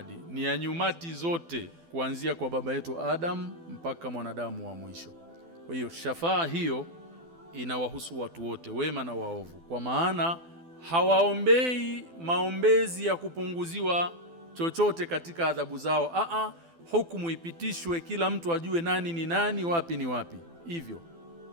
ni ya nyumati zote, kuanzia kwa baba yetu Adam mpaka mwanadamu wa mwisho. Kwa hiyo shafaa hiyo inawahusu watu wote, wema na waovu, kwa maana hawaombei maombezi ya kupunguziwa chochote katika adhabu zao. Hukumu ipitishwe, kila mtu ajue nani ni nani, wapi ni wapi. Hivyo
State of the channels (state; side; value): late; left; 12 ms